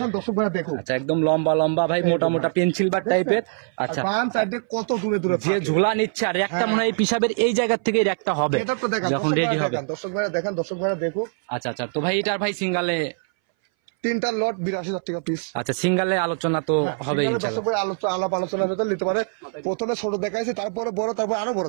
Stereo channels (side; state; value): left; silent; 61 dB below the other